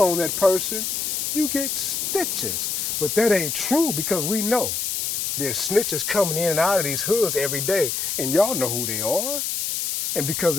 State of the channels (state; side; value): noise; left; hiss, 1 dB below the sound